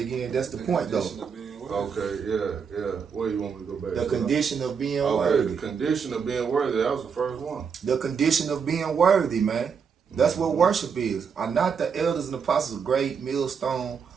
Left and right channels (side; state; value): left; quieter; 6.3 dB